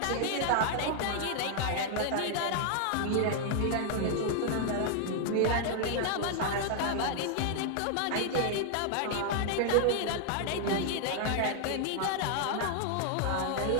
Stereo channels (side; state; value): both; different; correlation 0.00